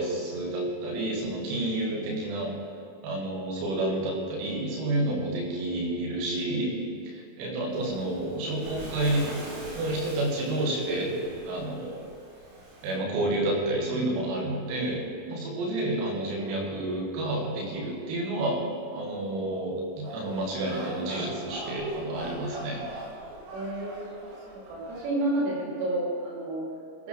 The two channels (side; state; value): left; late; 32 ms